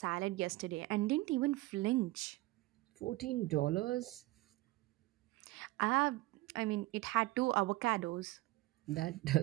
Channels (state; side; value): quieter; left; 19.4 dB